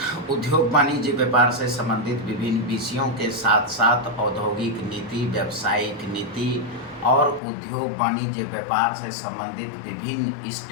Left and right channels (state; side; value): drops out; right; at 7.4 s